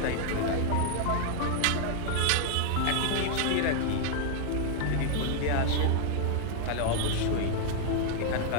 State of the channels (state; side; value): different; both; correlation 0.00